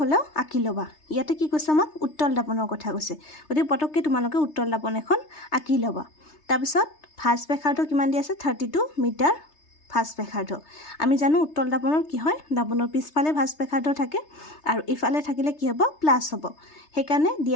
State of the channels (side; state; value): right; late; 3.3 ms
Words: হ'লেও আঁকি ল'বা। ইয়াতে কি কৈছে আমাক উত্তল দাপনৰ কথা কৈছে, গতিকে পটককৈ তোমালোকে উত্তল দাপন এখন আঁকি ল'বা। তাৰপিছত ভাঁজ ব্যাসাৰ্ধ কিমান দি আছে 32 মিটাৰ ভাঁজ ব্যাসাৰ্ধ। আমি জানো উত্তল দাপনৰ কি হয় দাপনৰ পিছফালে ভাঁজ ব্যাসাৰ্ধ থাকে, আৰু ইফালে থাকিলে কি হ'ব প্লাছ হ'ব। সেইকাৰণে